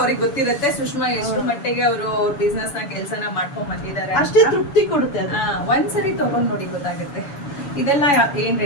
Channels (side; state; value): right; late; 7.0 ms